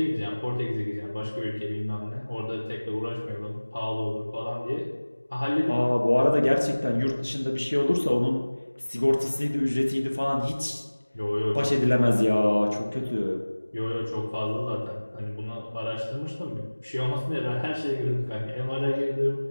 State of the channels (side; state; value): both; inverted; correlation -1.00